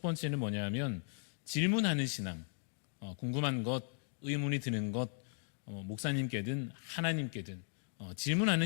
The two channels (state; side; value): silent; right; digital silence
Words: 번째는 뭐냐면 질문하는 신앙, 궁금한 것, 의문이 드는 것, 목사님께든 하나님께든